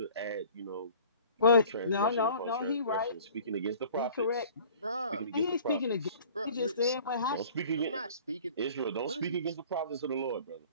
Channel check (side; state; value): both; inverted; correlation -0.47